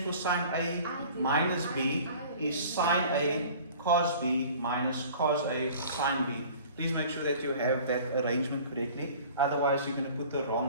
for sine A minus B is sine A cos B minus cos A sin B. Please make sure that you have that arrangement correctly, otherwise you're going to put the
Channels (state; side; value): inverted; both; correlation -0.46